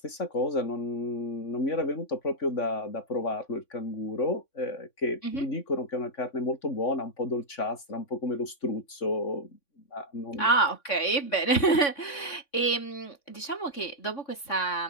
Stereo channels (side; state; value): right; late; 3.6 ms